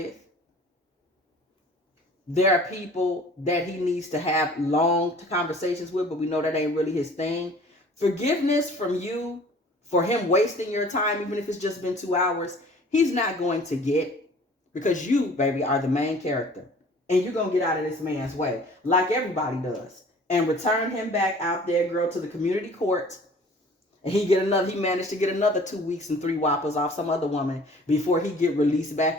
There are people that he needs to have long conversations with, but we know that ain't really his thing. Forgiveness from you for him wasting your time, even if it's just been 2 hours, he's not going to get, because you, baby, are the main character. And you're going to get out of this man's way, like everybody does, and return him back out there, girl, to the community court. And he managed to get another 2 weeks and 3 whoppers off some other woman before he get released back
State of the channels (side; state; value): both; normal; correlation 0.49